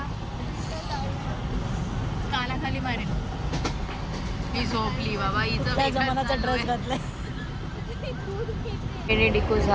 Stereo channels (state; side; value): identical; both; correlation 1.00